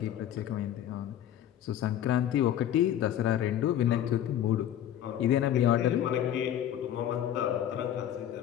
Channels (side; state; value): right; quieter; 10.9 dB